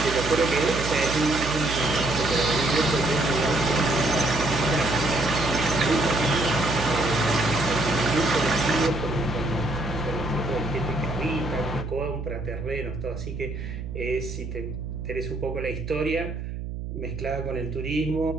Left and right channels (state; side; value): noise; right; hum, 7 dB below the sound